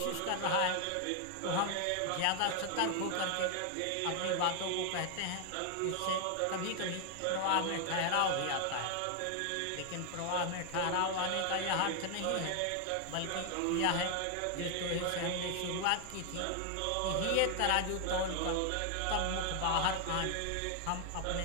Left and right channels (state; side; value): different; both; correlation 0.00